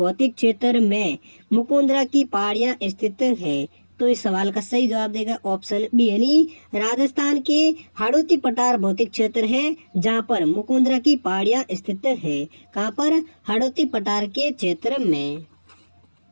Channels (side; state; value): both; inverted; correlation -1.00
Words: क्षेत्र में मुकुंदरा की पहाड़ियां स्थित है? तो इस सवाल का सही जवाब देगा ऑप्शन बी यानी राजस्थान के हाड़ौती पठार भौतिक क्षेत्र है जहां पर मुकुंदरा की पहाड़ियां स्थित है। कहां पर? हाड़ौती पठार के क्षेत्र में।